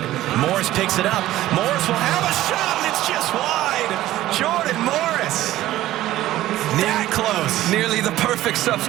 Morris picks it up. Morris will have a shot, and it's just wide. Jordan Morris. That close. Nearly the perfect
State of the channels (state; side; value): quieter; left; 14.8 dB